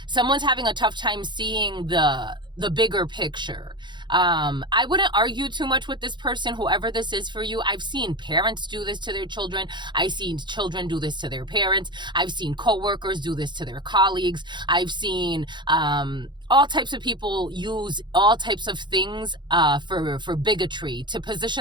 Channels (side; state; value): left; late; 0.22 ms